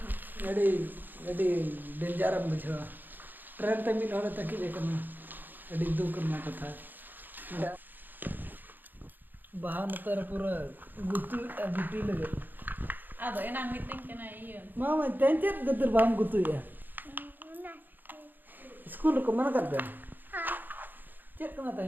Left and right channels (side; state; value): left; late; 0.089 ms